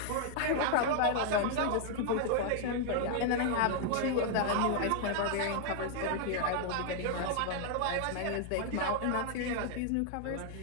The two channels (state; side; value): different; both; correlation 0.00